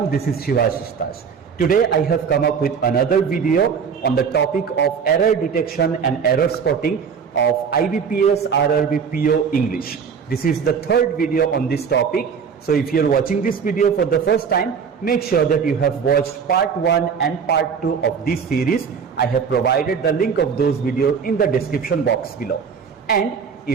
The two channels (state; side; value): quieter; left; 6.5 dB